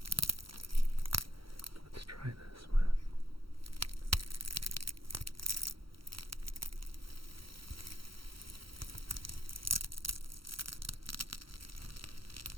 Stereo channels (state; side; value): late; left; 0.74 ms